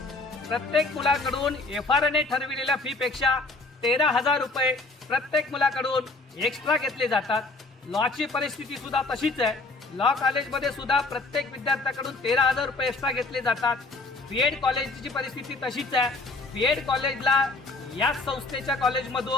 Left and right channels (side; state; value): right; quieter; 3.4 dB